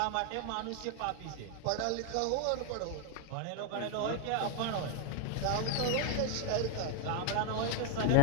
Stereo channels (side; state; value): both; different; correlation 0.00